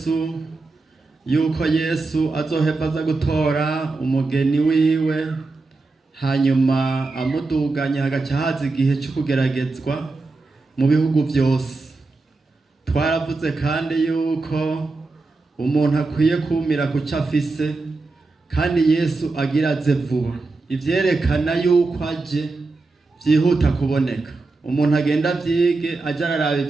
yuko Yesu azoheva aza gutora umugeni wiwe, hanyuma amuduganya hagaca haza igihe cyo kugeragezwa mu bihugu byose. Twaravuze kandi yuko umuntu akwiye kumira ku cyo afise, kandi Yesu agira aze vuba. Ivyerekana yuko aje byihuta kuboneka. Umuntu agenda vyige aja araraba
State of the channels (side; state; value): left; quieter; 3.6 dB